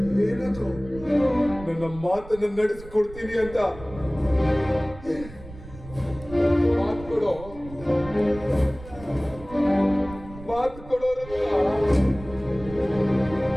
ಏನದು? ನನ್ನ ಮಾತನ್ನು ನಡೆಸಿಕೊಡ್ತೀನಿ ಅಂತ ಮಾತು ಕೊಡೋ, ಮಾತು ಕೊಡೋ ರುದ್ರ,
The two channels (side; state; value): right; noise; rumble, 16 dB below the sound